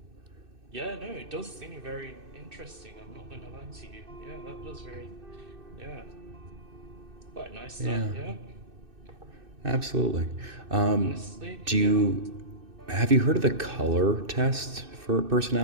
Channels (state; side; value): late; left; 2.6 ms